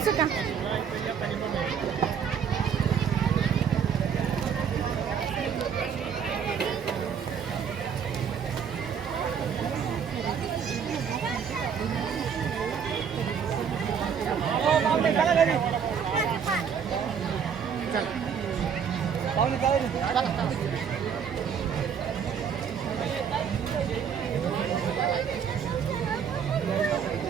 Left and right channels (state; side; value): quieter; left; 7.2 dB